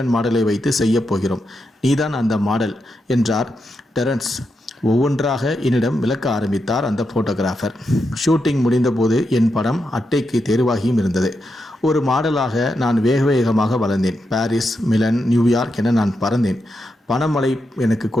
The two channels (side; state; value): both; normal; correlation 0.85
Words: மாடலை வைத்து செய்ய போகிறோம், நீதான் அந்த மாடல் என்றார் டெரன்ஸ். ஒவ்வொன்றாக என்னிடம் விளக்க ஆரம்பித்தார் அந்த ஃபோட்டோகிராஃபர். ஷூட்டிங் முடிந்தபோது என் படம் அட்டைக்கு தேர்வாகியும் இருந்தது. ஒரு மாடலாக நான் வேகமாக வளர்ந்தேன். பாரிஸ், மிலன், நியூயார்க் என நான் பறந்தேன். பணமழை எனக்கு